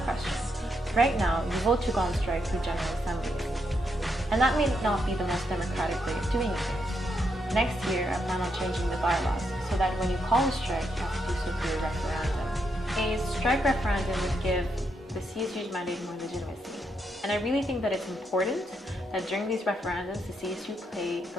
Right now, you vote to go on strike through General Assembly. And that may not be the most democratic way of doing things. Next year, I plan on changing the bylaws so that when you call a strike, you have to do so through a referendum. A strike referendum would give the CSU's mandate more legitimacy. And I really think that it's important that during these referendums, the CSU play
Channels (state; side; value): normal; both; correlation 0.80